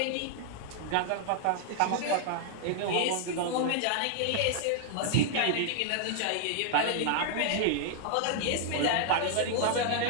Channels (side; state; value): both; different; correlation 0.00